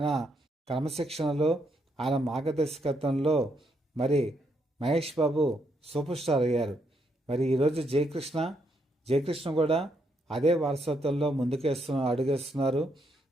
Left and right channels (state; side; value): normal; both; correlation 0.76